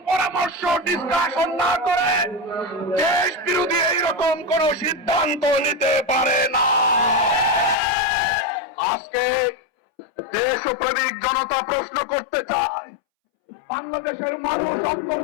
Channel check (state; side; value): drops out; right; at 7.8 s